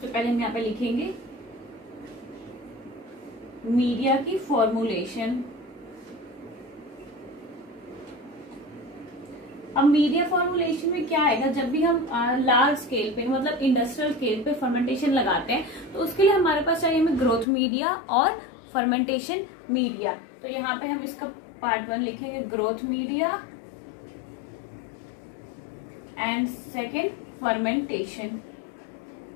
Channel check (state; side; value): drops out; right; at 17.4 s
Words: पहले हम यहाँ पे लिखेंगे मीडिया की फॉर्मुलेशन। अब मीडिया फॉर्मुलेशन में क्या आएगा, जब भी हम लार्ज स्केल पे मतलब इंडस्ट्रियल स्केल पे फर्मेंटेशन लगाते हैं तो उसके लिए हमारे पास चाहिए हमें ग्रोथ मीडिया और फर्मेंटेशन मीडिया। तो यहाँ पे हम इसका पार्ट 1 लिखेंगे growth media and second fermentation.